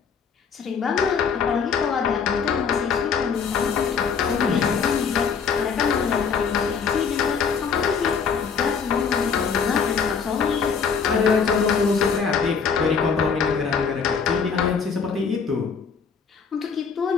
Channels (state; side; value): quieter; right; 6.1 dB